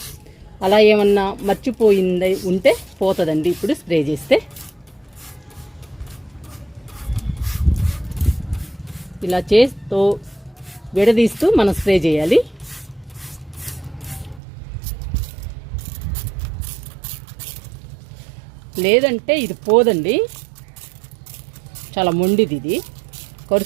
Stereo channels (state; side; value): drops out; left; at 14.4 s